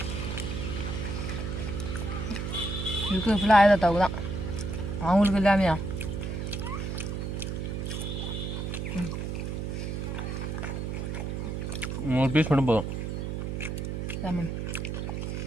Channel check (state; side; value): noise; right; hum, 3 dB below the sound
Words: இருக்குது ஃபுல்லாக ஆயா தாத்தாவுக்கு தான், அவங்களுக்கு இல்லாமையா. ஒரு பீஸ் மட்டும் போதும். லெமன்